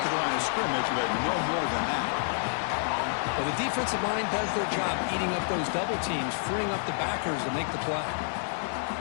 the line of scrimmage, but no more than that. Well, the defensive line does their job eating up those double teams, freeing up the backers to make the play.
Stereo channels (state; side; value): silent; right; 59 dB below the other